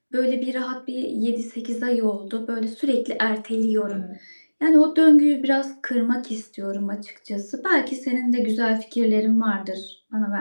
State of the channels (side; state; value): both; inverted; correlation -1.00